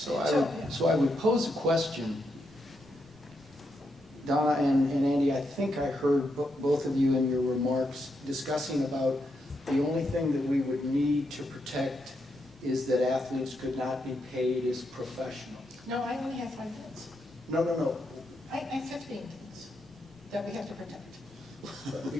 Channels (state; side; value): noise; right; rumble, 27 dB below the sound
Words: I would pose a question. Donna and Andy, I think I heard both of you in your remarks discussing about the only thing that we would need to protect is that athletes could not be paid as professional. No, I only have 5 things. No. I have 15 things that we have to protect.